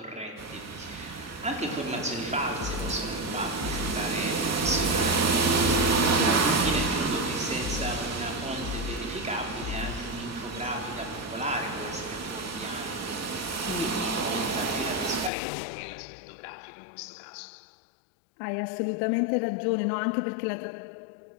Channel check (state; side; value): drops out; right; at 15.3 s